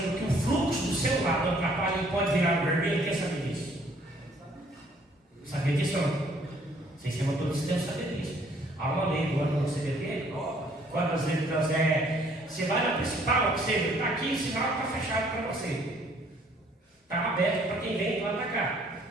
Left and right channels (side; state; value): both; normal; correlation 0.62